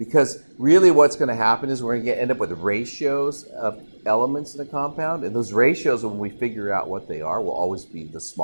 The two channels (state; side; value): inverted; both; correlation -1.00